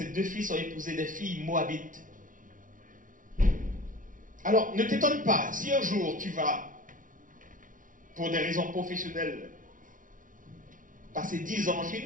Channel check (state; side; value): late; left; 0.38 ms